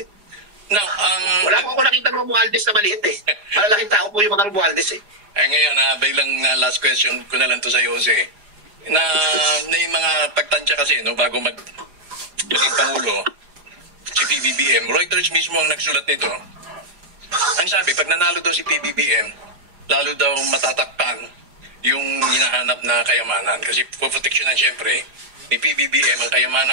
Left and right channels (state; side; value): late; left; 4.9 ms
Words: No, wala ko nakita ng Romualdez na maliit eh. Malalaking tao po yung mga Romualdez eh. Ngayon, bilang last question ko na lang to sa iyo, Jose. Na yung mga pagtansya kasi, no, bago maging Pangulo, si PBBM, Reuters mismo ang nagsulat nito. Ang sabi, pag nanalo daw si PBBM, lalo daw matatakpan yung hinahanap na kayamanan. Kasi poproteksyonan siyempre ni PBBM ang